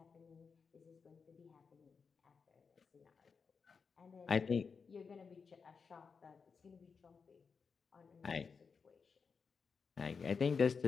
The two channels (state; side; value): quieter; right; 5.4 dB